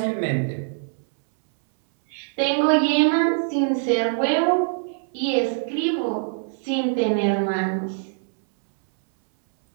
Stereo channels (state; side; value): silent; left; 63 dB below the other